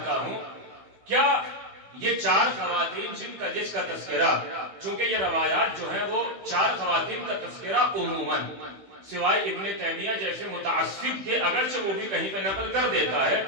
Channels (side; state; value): left; late; 15 ms